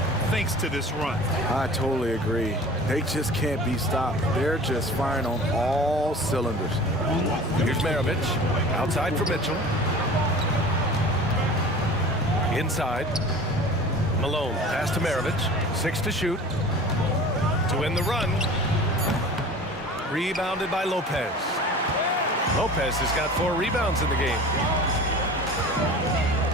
thanks to this run. I totally agree. They just can't be stopped. They're just firing on all cylinders. Here's Maravich. Outside for Mitchell. Inside. Malone. Pass to Maravich. 6 to shoot. To win the run. Rebounded by Lopez. Lopez has got 4 rebounds in the game.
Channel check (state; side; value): normal; both; correlation 0.40